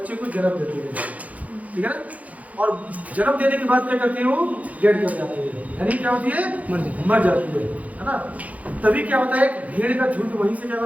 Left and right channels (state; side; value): late; left; 0.071 ms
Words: को जन्म देती है। ठीक है ना, और जन्म देने के बाद क्या करती है, वो डेड कर जाती है, यानी क्या होती है, मर जाती है ना। तभी क्या होता है, एक भेड़ का झुंड वहीं से क्या